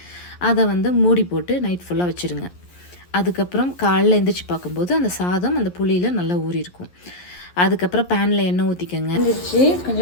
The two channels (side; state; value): right; late; 11 ms